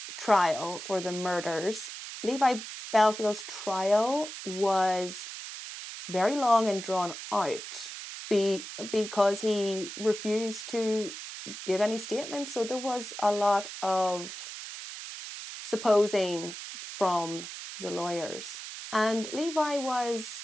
trial for the murders, Levi Bellfield's trial was very long and drawn out because he refused to give any statements. So there was a lot of supposing from the lawyers. And Levi was,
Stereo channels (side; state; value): right; noise; hiss, 10 dB below the sound